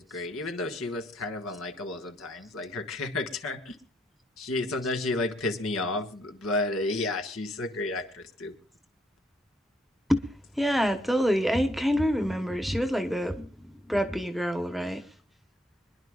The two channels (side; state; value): both; normal; correlation 0.72